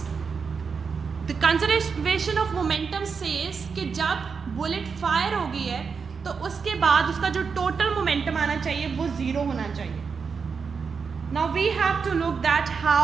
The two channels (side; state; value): left; quieter; 5.6 dB